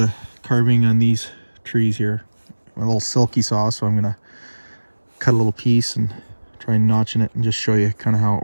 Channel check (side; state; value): both; inverted; correlation -1.00